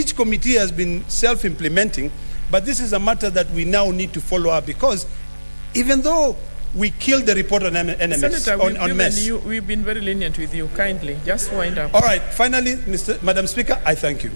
committee has been self-implementing, but this is a matter that we now need to follow up, because even though we killed the report on NMS, Senator, on MES. We've been very lenient with you. Kindly, just wind up. All right, finally, Madam Speaker, I thank you.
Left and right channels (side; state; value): both; inverted; correlation -1.00